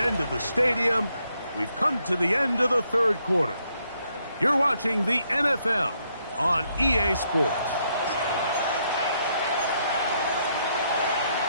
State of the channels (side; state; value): both; inverted; correlation -0.75